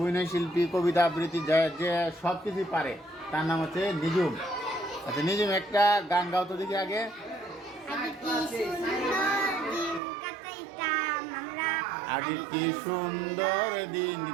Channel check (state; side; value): drops out; left; at 10.0 s